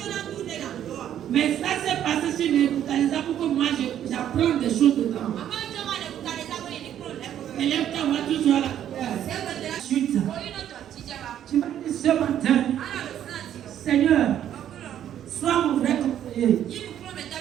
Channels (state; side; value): quieter; left; 10.6 dB